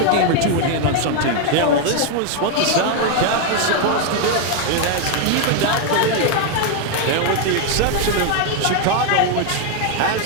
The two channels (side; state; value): both; different; correlation 0.01